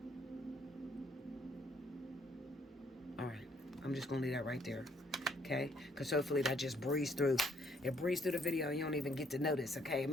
All right. I'm just going to leave that right there. Okay? Because hopefully that just breezed through. It breezed through the video and you don't even get to notice. Okay?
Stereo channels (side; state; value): both; normal; correlation 0.66